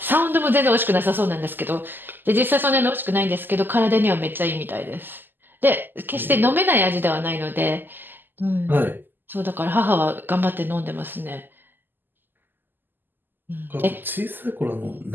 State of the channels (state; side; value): late; left; 0.092 ms